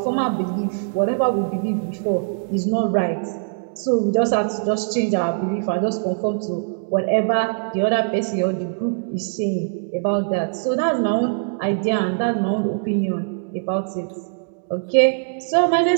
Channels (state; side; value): silent; left; digital silence